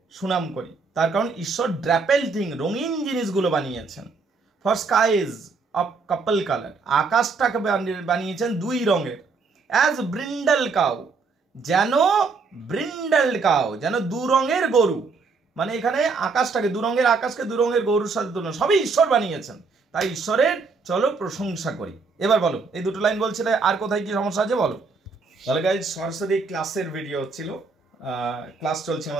সুনাম করি, তার কারণ ঈশ্বর ড্রাপেল থিং, রঙিন জিনিসগুলো বানিয়েছেন। For skies of couple colour, আকাশটাকে বানিয়েছেন দুই রঙের। অ্যাজ ব্রিন্ডাল কাউ, যেন ব্রিন্ডাল কাউ, যেন দু রঙের গরু, মানে এখানে আকাশটাকে, দু রঙের আকাশকে দু রঙের গরুর সাথে তুলনা, সবই ঈশ্বর বানিয়েছেন, তাই ঈশ্বরের চলো প্রশংসা করি। এবার বলো, এই দুটো লাইন বলছিলে, আর কোথায় কি সমস্যা আছে বলো। তাহলে গাইজ সরাসরি ক্লাসের ভিডিও হচ্ছিল, ক্লাস চলছে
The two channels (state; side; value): quieter; left; 4.5 dB